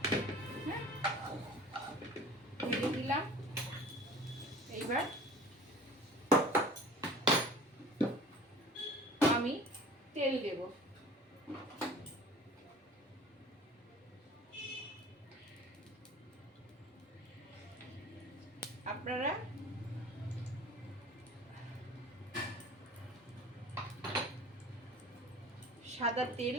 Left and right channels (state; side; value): normal; both; correlation 0.43